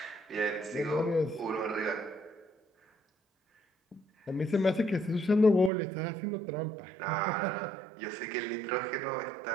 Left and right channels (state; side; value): drops out; left; at 5.7 s